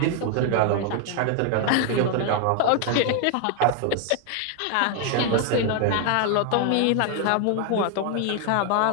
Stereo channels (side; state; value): both; different; correlation 0.00